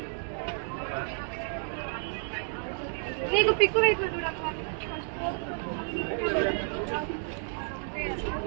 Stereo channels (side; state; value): left; silent; 57 dB below the other